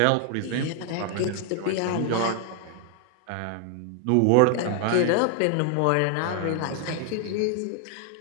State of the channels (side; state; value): both; different; correlation 0.00